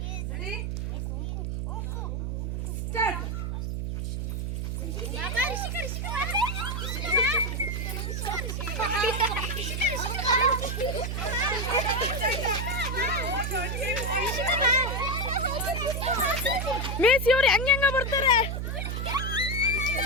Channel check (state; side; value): noise; right; hum, 2 dB below the sound